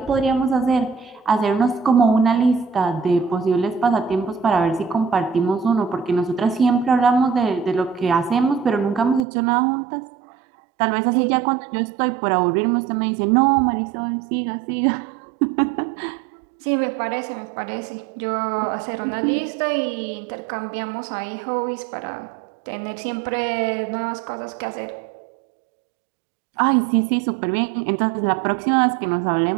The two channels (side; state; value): left; drops out; at 9.2 s